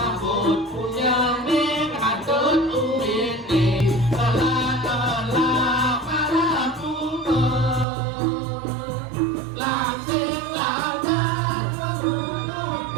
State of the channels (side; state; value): left; drops out; at 7.9 s